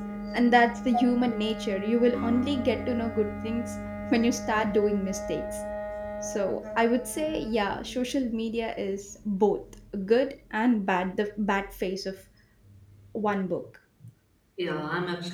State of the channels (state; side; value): identical; both; correlation 1.00